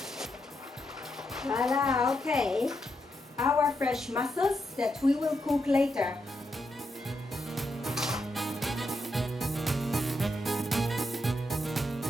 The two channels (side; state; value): both; normal; correlation 0.83